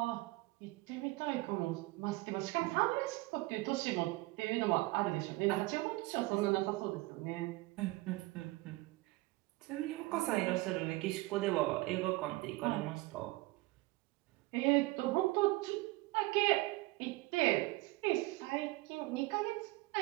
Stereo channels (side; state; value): left; quieter; 21.3 dB